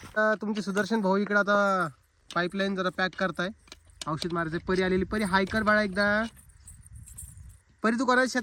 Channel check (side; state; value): both; identical; correlation 1.00